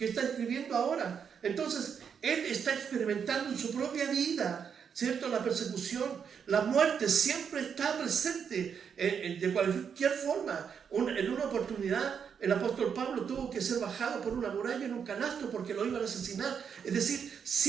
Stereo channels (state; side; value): quieter; left; 7.1 dB